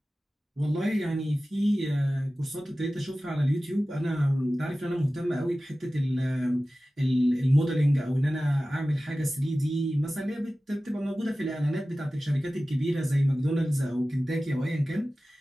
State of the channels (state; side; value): normal; both; correlation 0.96